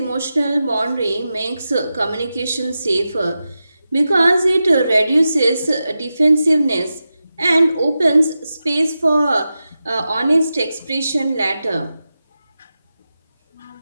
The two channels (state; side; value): inverted; both; correlation -0.92